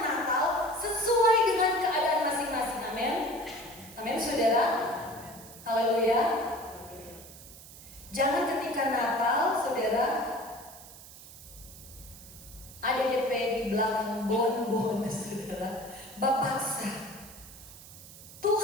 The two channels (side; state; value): right; noise; hiss, 17 dB below the sound